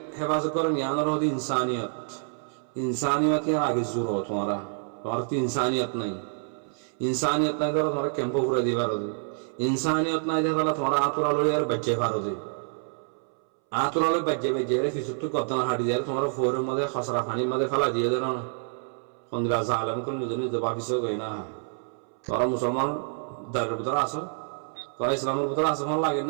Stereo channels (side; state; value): left; silent; 59 dB below the other